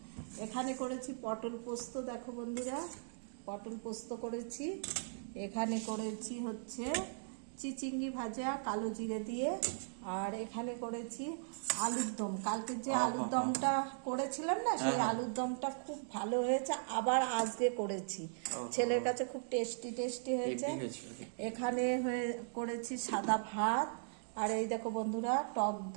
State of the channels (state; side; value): silent; left; digital silence